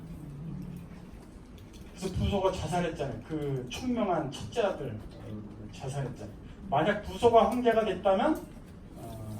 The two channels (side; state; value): both; identical; correlation 1.00